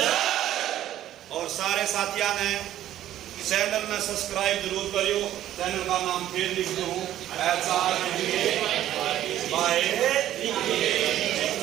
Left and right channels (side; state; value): left; quieter; 12.5 dB